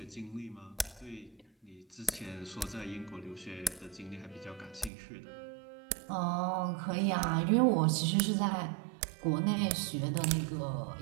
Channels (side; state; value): left; drops out; at 4.9 s